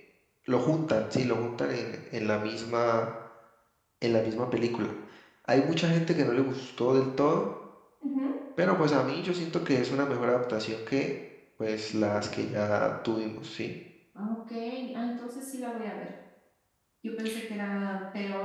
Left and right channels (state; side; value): identical; both; correlation 1.00